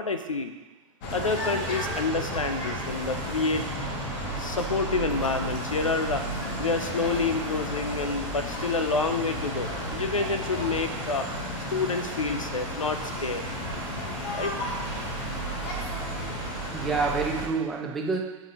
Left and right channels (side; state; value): both; normal; correlation -0.04